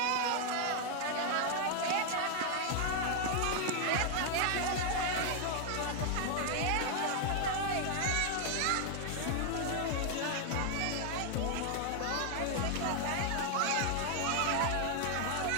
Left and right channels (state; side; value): different; both; correlation 0.00